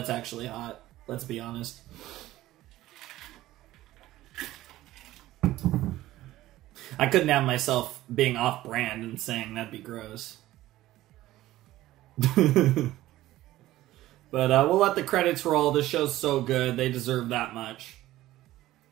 actually hot. Let's be honest. I couldn't have myself being off-brand and saying that'd be gross. But we'll let the credits roll. This show's so good. They deserve that much.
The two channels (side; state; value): left; quieter; 15.7 dB